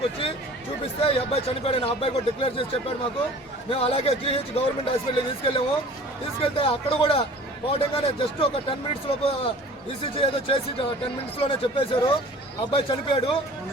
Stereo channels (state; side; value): normal; both; correlation 0.45